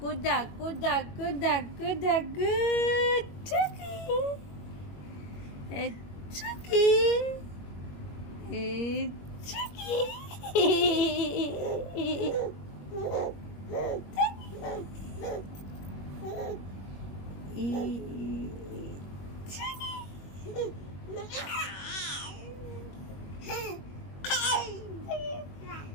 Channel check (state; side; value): late; right; 21 ms